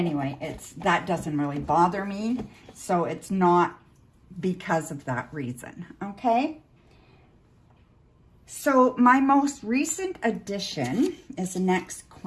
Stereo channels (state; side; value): identical; both; correlation 1.00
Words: that doesn't really bother me. So it's not because of that reason, okay? So my most recent addition is the next